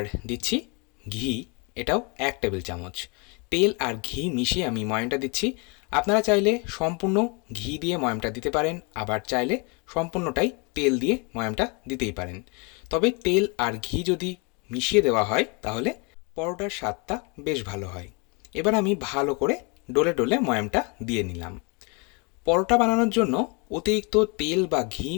দিচ্ছি ঘি, এটাও 1 টেবিল চামচ। তেল আর ঘি মিশিয়ে আমি ময়ামটা দিচ্ছি। আপনারা চাইলে সম্পূর্ণ ঘি দিয়ে ময়ামটা দিতে পারেন, আবার চাইলে সম্পূর্ণটাই তেল দিয়ে ময়ামটা দিতেই পারেন। তবে তেল আর ঘি যদি মিশিয়ে দেওয়া হয় তাহলে পরোটার স্বাদটা বেশ ভালো হয়। এবার আমি ভালো করে ডলে ডলে ময়ামটা দিয়ে নিলাম। পরোটা বানানোর জন্য অতিরিক্ত তেল বা ঘি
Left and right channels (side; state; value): right; quieter; 31.8 dB